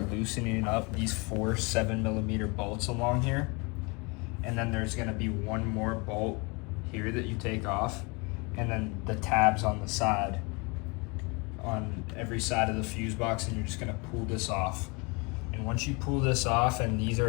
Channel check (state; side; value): quieter; right; 29.2 dB